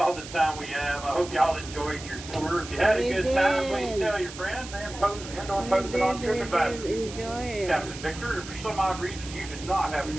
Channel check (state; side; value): noise; right; hiss, 13 dB below the sound